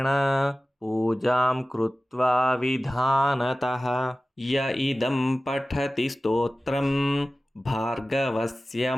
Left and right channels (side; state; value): both; normal; correlation 0.96